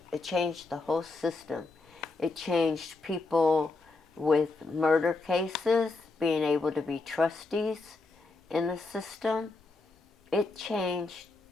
It changed the whole system. It changed people with murder cases being able to be trustees in the system. It changed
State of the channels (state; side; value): quieter; right; 3.5 dB